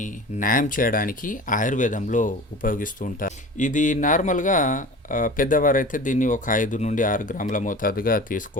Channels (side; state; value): both; normal; correlation 0.37